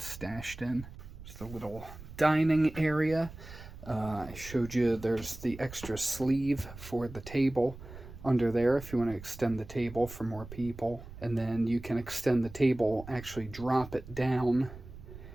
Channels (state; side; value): noise; right; rumble, 15 dB below the sound